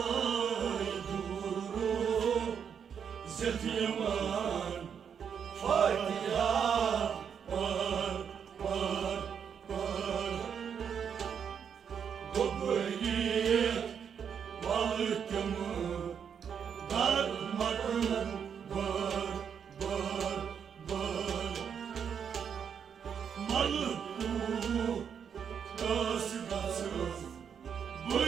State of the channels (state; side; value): quieter; left; 7.5 dB